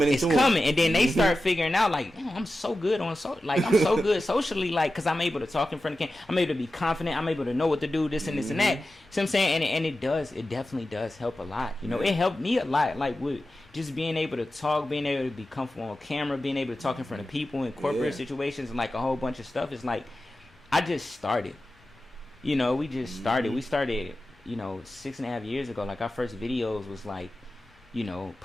into them. It's coming, and then they start figuring out like, I'm so good I'm so good socially, like, because I'm able to talk in front of the camera. I'm able to be confident. I'm able to know what to do, this and this and that. See what I'm saying? And it definitely does help a lot. You know, it helped me a lot, like with just being able to talk, being able to be comfortable on camera, being able to talk in front of people in corporate situations, and like a whole bunch of stuff. It's like I just started. You know, we just started. We started, 6.5 years ago. Like our first videos was like,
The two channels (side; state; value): both; normal; correlation 0.93